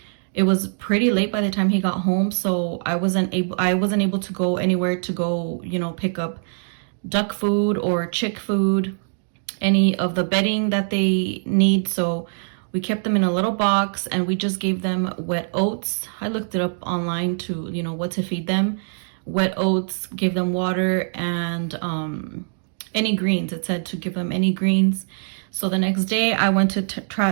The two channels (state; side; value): silent; left; digital silence